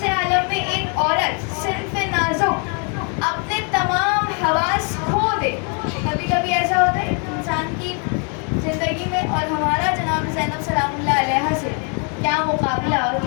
عالم میں ایک عورت صنف نازک اپنے تمام حواس کھو دے۔ کبھی کبھی ایسا ہوتا ہے انسان کی زندگی میں، اور ہمارا جناب زینب سلام اللہ علیہ سے کیا مقابلہ اور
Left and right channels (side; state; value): right; quieter; 38.8 dB